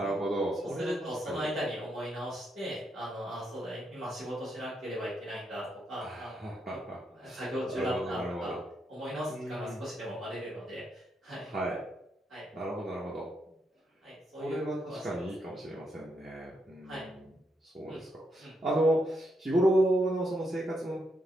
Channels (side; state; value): both; normal; correlation 0.79